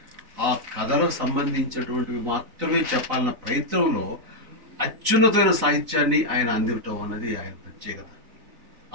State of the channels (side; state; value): left; late; 4.0 ms